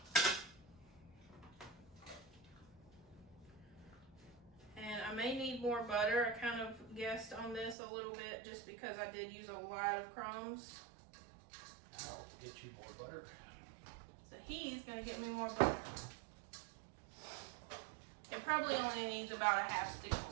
And I may need more butter. I kind of guessed on this a little bit just because I did use a lot of crumbs. I'll get you more butter. So he's gonna get me more butter. It probably only needs about a half stick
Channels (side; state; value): left; drops out; at 7.8 s